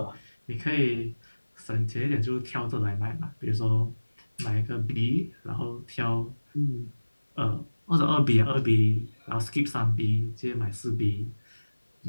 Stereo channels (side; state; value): both; inverted; correlation -1.00